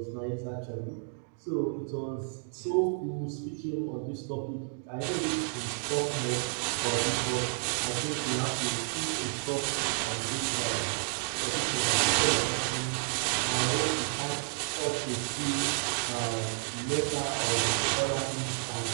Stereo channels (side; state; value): left; silent; 57 dB below the other